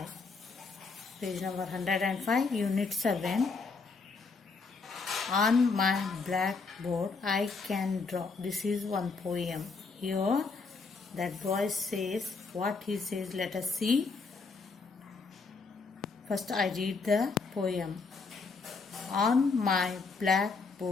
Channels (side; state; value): right; quieter; 4.4 dB